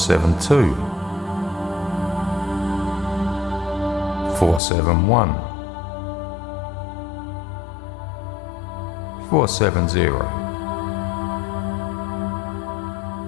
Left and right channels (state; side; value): drops out; right; at 4.6 s